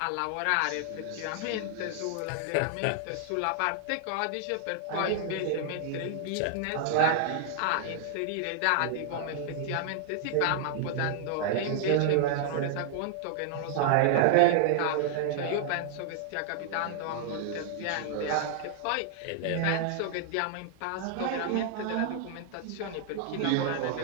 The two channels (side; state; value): both; different; correlation 0.00